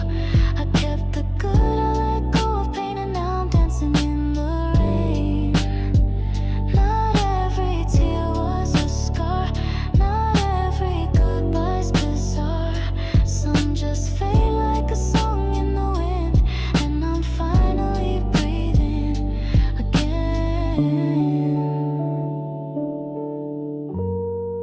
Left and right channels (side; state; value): both; identical; correlation 1.00